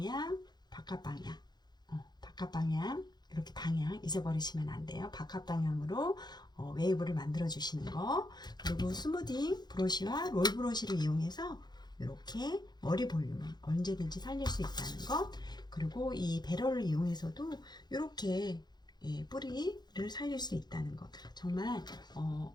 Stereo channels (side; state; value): right; late; 0.20 ms